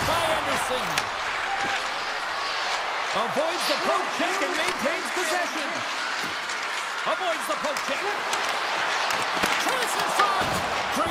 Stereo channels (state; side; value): identical; both; correlation 1.00